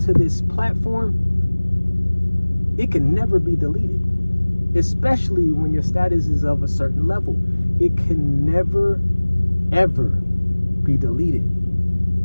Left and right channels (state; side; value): inverted; both; correlation -1.00